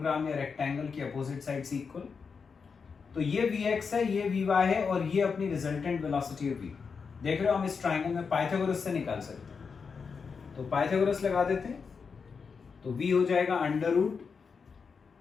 या रेक्टेंगल की अपोजिट साइड से इक्वल। तो ये vx है, ये vy है और ये अपनी रिजल्टेंट वेलोसिटी है v। देख रहे हो हम इस ट्राइंगल में पाइथागोरस से निकाल सकते हैं, तो पाइथागोरस लगा देते हैं, तो v हो जाएगा under root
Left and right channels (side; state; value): right; quieter; 5.5 dB